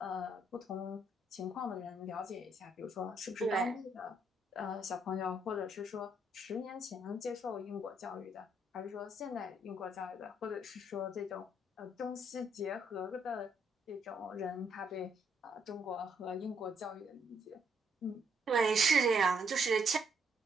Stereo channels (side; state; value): both; normal; correlation 0.72